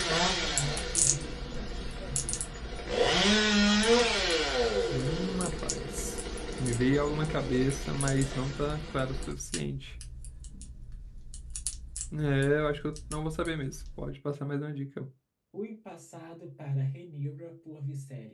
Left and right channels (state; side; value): identical; both; correlation 1.00